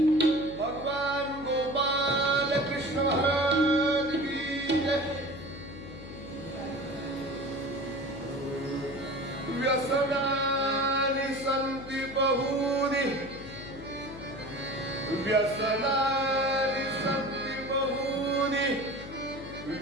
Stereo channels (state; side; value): noise; left; hum, 13 dB below the sound